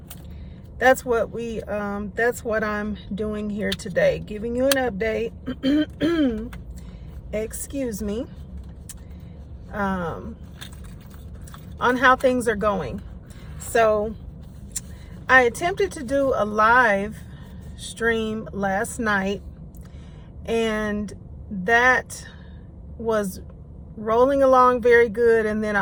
that's what I'm doing here today, giving you an update. Excuse me, on how things are going. So I attempted to do a live stream last night and that was rolling along very good, and then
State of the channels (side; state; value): both; identical; correlation 1.00